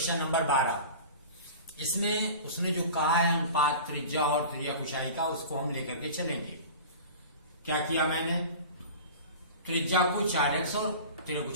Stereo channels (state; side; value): inverted; both; correlation -0.37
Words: नंबर 12, इसमें उसने जो कहा है अनुपात त्रिज्या और त्रिज्या ऊंचाई का, उसको हम लेकर के चलेंगे। क्या किया मैंने, त्रिज्या को 4x और